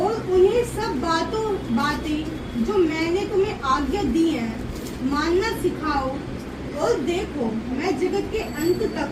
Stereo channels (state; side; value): identical; both; correlation 1.00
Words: उन्हें सब बातें जो मैंने तुम्हें आज्ञा दी है मानना सिखाओ, और देखो मैं जगत के अंत तक